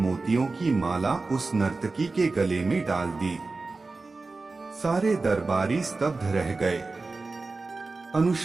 की माला उस नर्तकी के गले में डाल दी। सारे दरबारी स्तब्ध रह गए।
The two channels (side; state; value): left; quieter; 3.7 dB